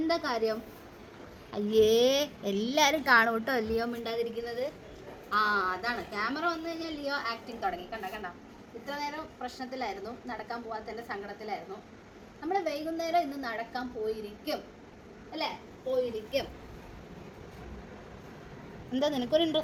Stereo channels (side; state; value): both; identical; correlation 1.00